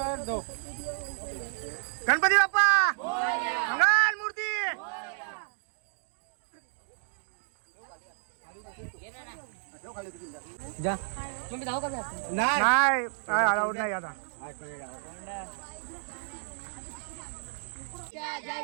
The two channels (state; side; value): silent; left; digital silence